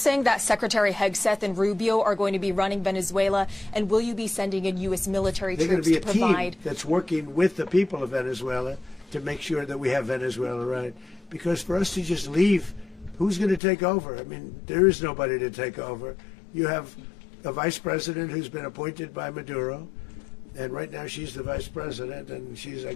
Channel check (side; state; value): right; drops out; at 13.6 s